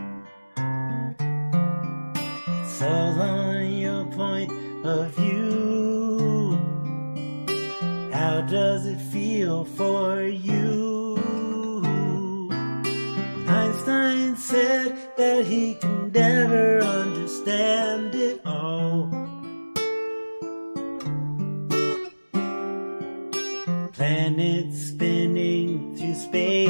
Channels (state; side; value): inverted; both; correlation -1.00